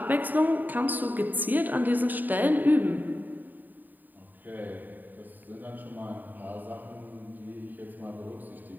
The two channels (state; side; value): late; left; 0.087 ms